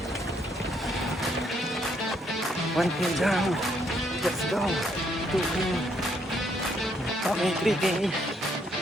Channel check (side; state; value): both; normal; correlation 0.71